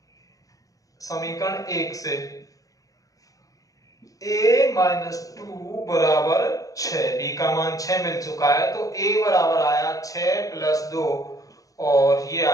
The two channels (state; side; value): late; right; 0.17 ms